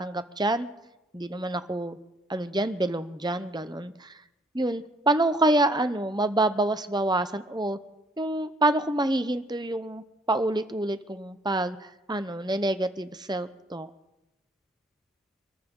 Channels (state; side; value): normal; both; correlation 0.62